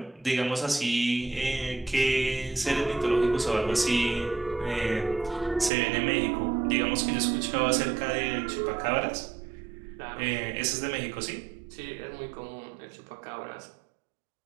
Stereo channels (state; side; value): drops out; left; at 5.7 s